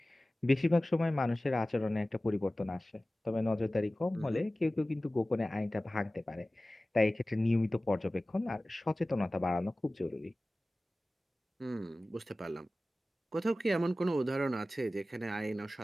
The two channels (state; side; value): normal; both; correlation 0.97